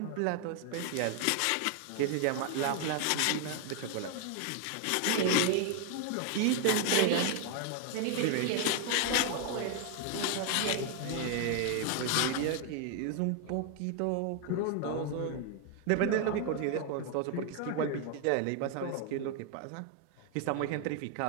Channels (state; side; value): different; both; correlation 0.00